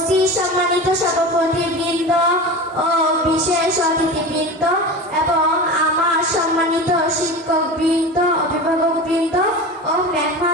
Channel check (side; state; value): both; normal; correlation 0.30